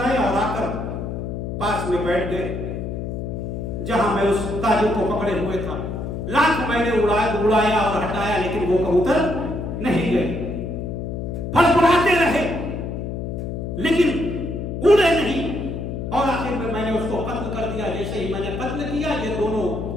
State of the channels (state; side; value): noise; left; hum, 5 dB below the sound